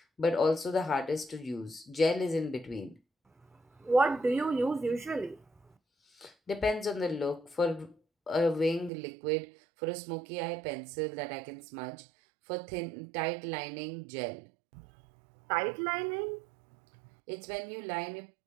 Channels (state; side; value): drops out; left; at 8.9 s